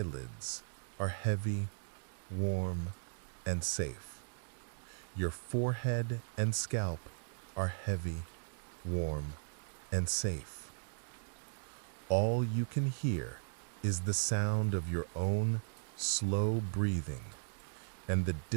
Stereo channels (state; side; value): silent; left; digital silence